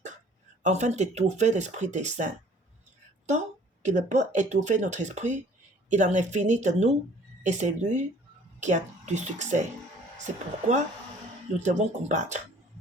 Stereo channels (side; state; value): both; normal; correlation 0.54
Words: afin d'étouffer l'esprit des saints. Tant qu'il peut étouffer notre esprit, il en est fini de nous et c'est lui qui a du succès. C'est pourquoi nous devons combattre.